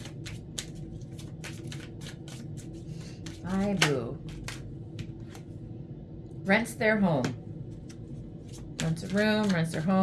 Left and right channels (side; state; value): both; identical; correlation 1.00